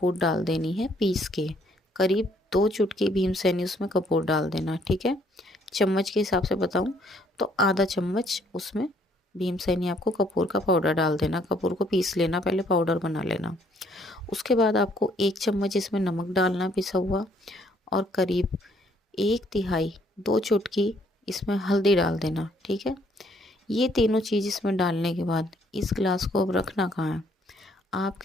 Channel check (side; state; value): both; normal; correlation 0.65